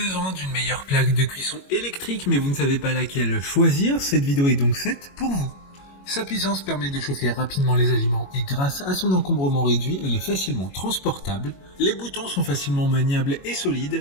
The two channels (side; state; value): right; late; 21 ms